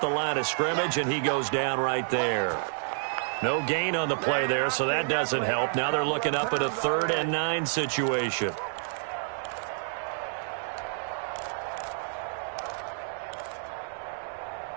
the line of scrimmage, and he goes down right there. No gain on the play there, so that doesn't help. Now they're looking up at a 3rd and 9 situation.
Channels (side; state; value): left; silent; digital silence